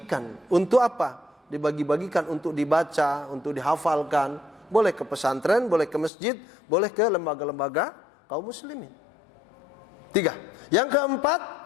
Untuk apa? Dibagi-bagikan untuk dibaca, untuk dihafalkan. Boleh ke pesantren, boleh ke masjid, boleh ke lembaga-lembaga kaum muslimin. 3. Yang keempat,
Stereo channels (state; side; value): drops out; right; at 6.1 s